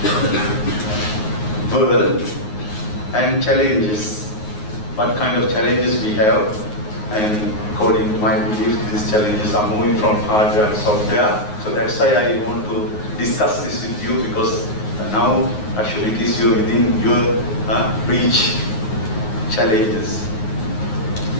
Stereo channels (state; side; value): late; right; 9.5 ms